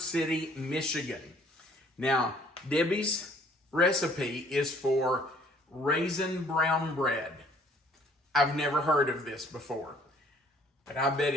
Michigan. Now, Debbie's recipe is for raisin brown bread. I've never heard of this before, but I bet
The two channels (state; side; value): normal; both; correlation 0.59